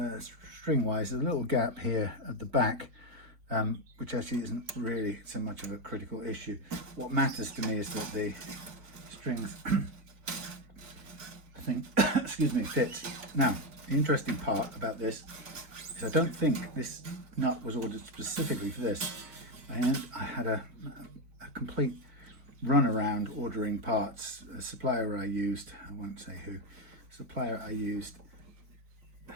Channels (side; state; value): left; late; 4.6 ms